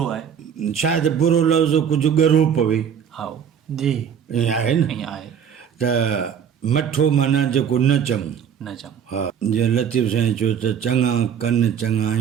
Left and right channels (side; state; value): left; quieter; 8.0 dB